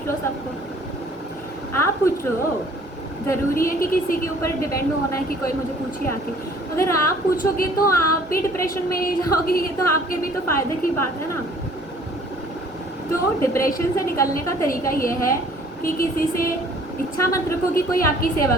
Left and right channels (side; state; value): both; normal; correlation 0.55